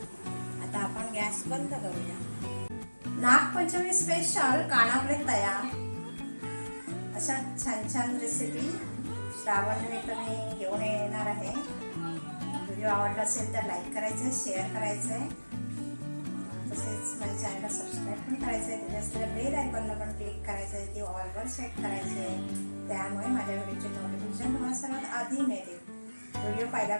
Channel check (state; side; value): inverted; both; correlation -1.00